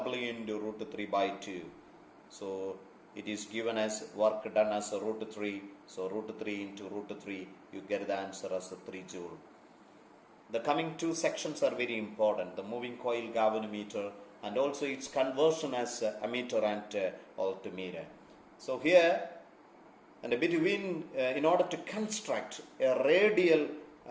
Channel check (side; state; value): both; identical; correlation 1.00